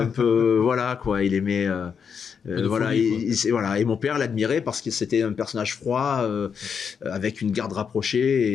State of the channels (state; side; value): quieter; right; 6.7 dB